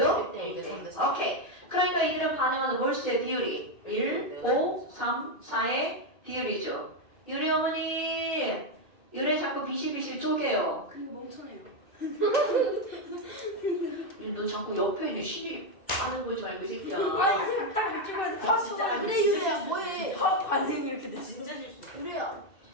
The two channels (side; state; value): right; late; 2.6 ms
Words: 1대 오케이. 그러니까 이들은 반응하는 몰수의 비율이 1, 5, 3, 4의 비율이죠. 유래 어머니, 유래 자꾸 비실비실 쪼개요. 그 멍청해요. 너 자꾸 옆에 있는 신이 아는 거지 말고 이 새끼야. 아니 딱 찍어야 아, 진짜 아니, 그래 진짜 이거 실수. 뭐해? 화학 반응이 이렇게 돼. 진짜 실수. 그래야